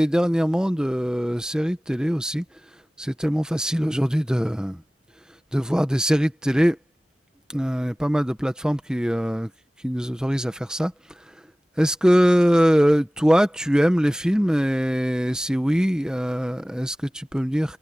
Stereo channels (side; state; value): both; normal; correlation 0.98